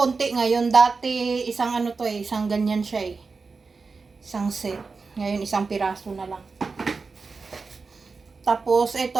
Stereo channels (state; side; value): quieter; left; 4.4 dB